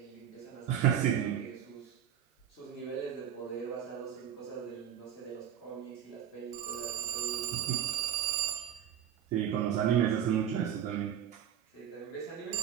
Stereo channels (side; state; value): left; quieter; 9.6 dB